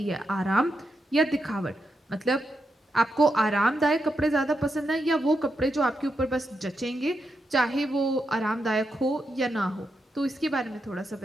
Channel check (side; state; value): both; normal; correlation 0.84